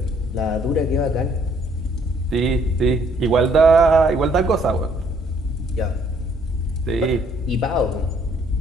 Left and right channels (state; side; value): normal; both; correlation 0.65